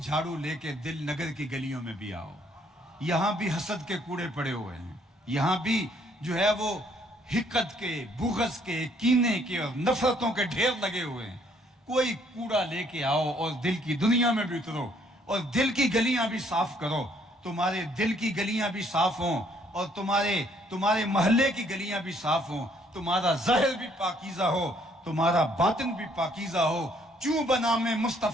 لے کے دل نگر کی گلیوں میں بھی آؤ۔ یہاں بھی حسد کے کوڑے پڑے ہوئے ہیں، یہاں بھی جو ہے وہ حقد کے، بغض کے، کینے کے اور نفرتوں کے ڈھیر لگے ہوئے ہیں۔ کوئی کوڑا لے کے آؤ اور دل کی دنیا میں بھی اترو اور دل کی گلیاں بھی صاف کرو۔ تمہارے دل کی گلیاں بھی صاف ہوں اور تمہارے محلے کی گلیاں بھی صاف ہوں، تمہارا ظاہر بھی پاکیزہ ہو، تمہارا باطن بھی پاکیزہ ہو۔ چوں بنام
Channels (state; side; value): normal; both; correlation 0.65